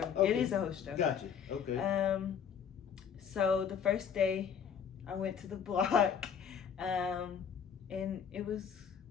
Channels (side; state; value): right; quieter; 7.5 dB